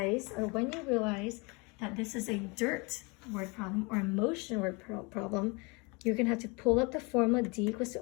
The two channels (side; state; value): right; quieter; 28.9 dB